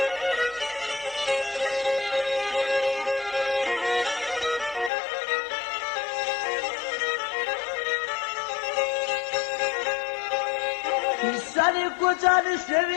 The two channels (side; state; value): right; drops out; at 4.9 s